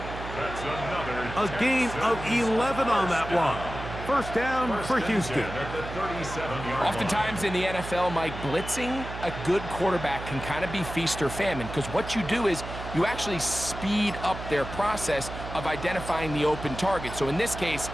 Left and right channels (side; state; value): right; noise; hum, 9 dB below the sound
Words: That's another a gain of 11 on that one. First down for Houston. Oftentimes in the NFL, Mike, blitzing a good quarterback can kind of be feast or famine, because what you do is you actually speed up their process of identifying the open target. So in this case,